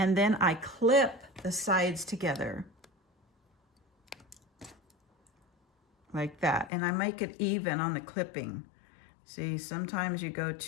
then I clip the sides together like that, and I make it even on the clipping. See, sometimes you go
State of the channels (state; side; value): drops out; right; at 6.7 s